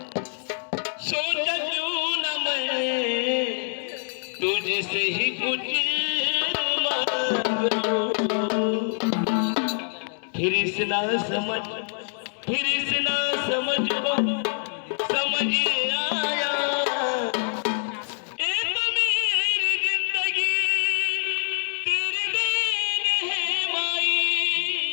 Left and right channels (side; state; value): right; silent; 62 dB below the other